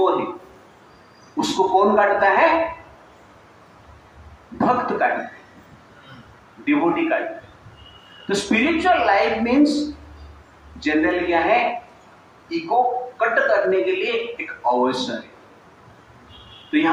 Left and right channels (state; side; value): identical; both; correlation 1.00